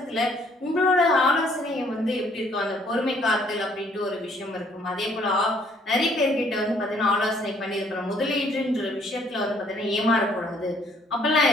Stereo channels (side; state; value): both; normal; correlation 0.63